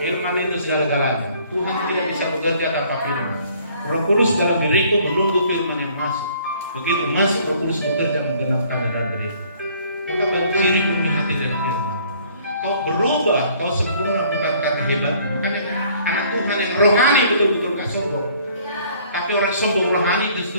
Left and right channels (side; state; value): both; inverted; correlation -0.58